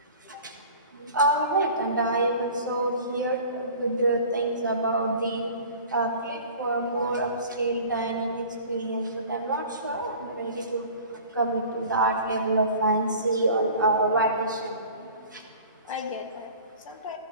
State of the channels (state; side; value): inverted; both; correlation -0.43